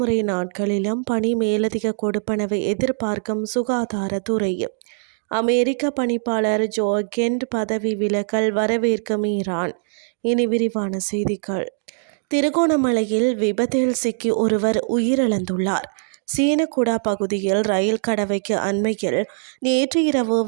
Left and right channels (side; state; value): left; silent; digital silence